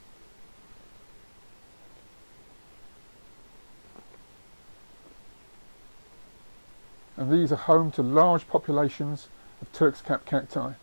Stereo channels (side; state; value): both; inverted; correlation -1.00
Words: And these are home to large populations of Turk's cap cacti.